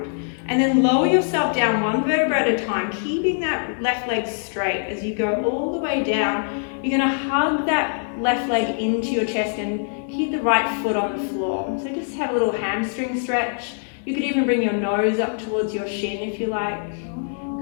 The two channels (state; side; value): silent; right; 62 dB below the other